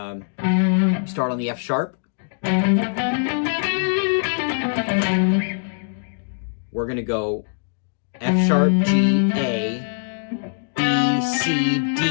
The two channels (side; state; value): right; silent; digital silence